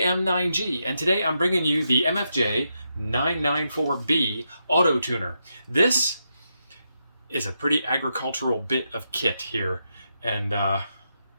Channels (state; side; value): inverted; both; correlation -0.83